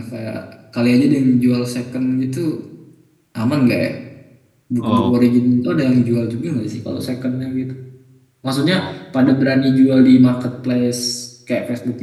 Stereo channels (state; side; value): identical; both; correlation 1.00